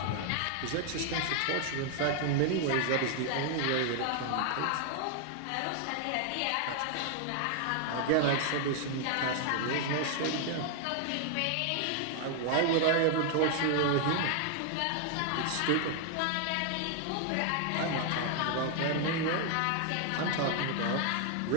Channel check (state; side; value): different; both; correlation 0.00